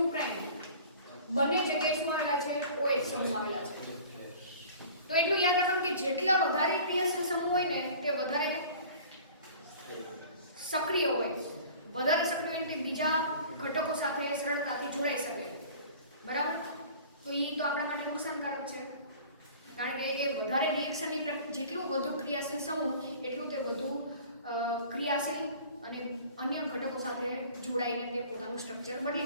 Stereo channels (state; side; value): inverted; both; correlation -0.44